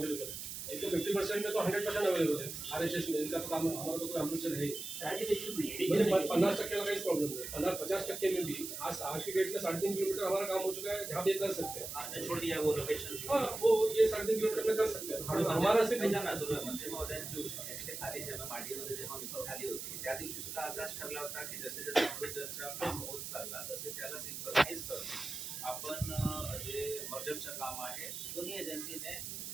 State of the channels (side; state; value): right; noise; hiss, 7 dB below the sound